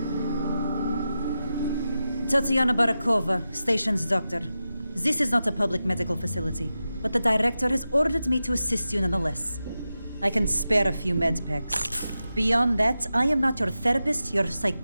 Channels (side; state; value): both; inverted; correlation -0.92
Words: Tatiana Barakova, station's doctor. This is not a public medical facility, but the director has ordered me to assist you nonetheless. I can spare a few med packs. Beyond that, I am not your therapist, your